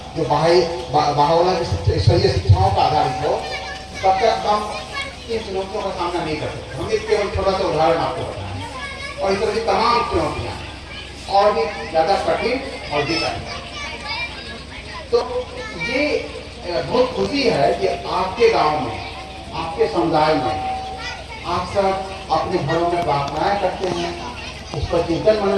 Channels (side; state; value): both; identical; correlation 1.00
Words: जो भावना की ईश्वरीय शिक्षाओं का आधारित हो, तब तक हम इन चुनौतियों का सामना नहीं कर सकते। हम एक केवल छोटा सा उदाहरण आपको बताएं, और इस तरह की तमाम चुनौतियां और भी ज्यादा कठिन और भी कठिन। तो ये बहुत खुशी है कि आपके गांव में, आपके समुदाय में आप सब अपने घरों में प्रार्थनाएं करते हैं, उस पर चिंतन